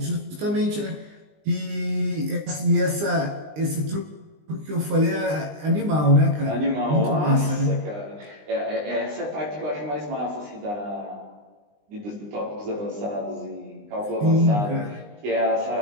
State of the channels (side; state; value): left; late; 20 ms